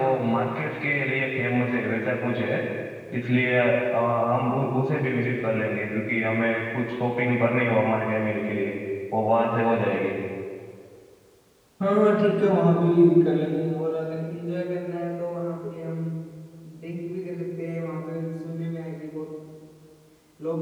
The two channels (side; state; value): both; identical; correlation 1.00